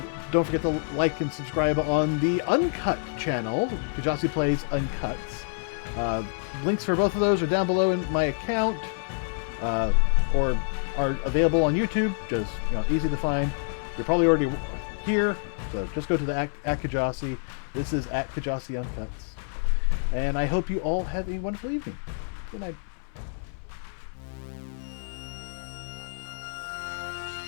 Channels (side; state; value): right; silent; 60 dB below the other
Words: don't forget to like and subscribe on the Uncut channel, Kjasi Plays Uncuts. Links for both of those are down below in my account, or are available on YouTube. Just easy to find. You're probably already here, so just go to the @Kjasi. This is @Kjasi Uncuts, and I hope you all have a wonderful evening. Good night.